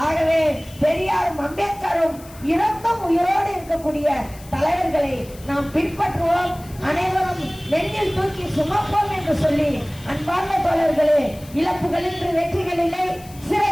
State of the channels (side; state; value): left; noise; hiss, 21 dB below the sound